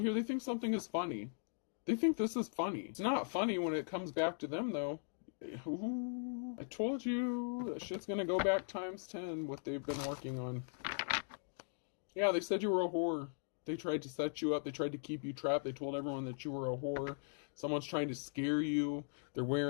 They think something is funny. They think this is funny. It's not funny when it comes back to them, though. Ooh, I told you that shit's gonna go back times 10 what they've been working on. Yeah, they said you were a whore. They tried to set you up. They tried to keep you trapped. They told everyone that you were a whore. Someone's trying to scare you. They're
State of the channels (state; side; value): silent; right; digital silence